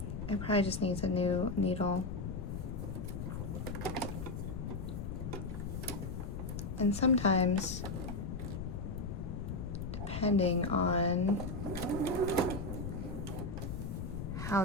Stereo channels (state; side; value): noise; left; rumble, 5 dB below the sound